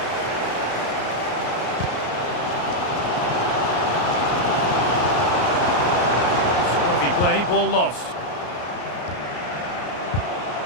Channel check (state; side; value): late; right; 33 ms